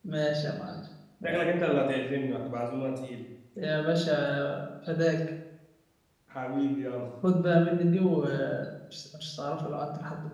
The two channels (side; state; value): both; identical; correlation 1.00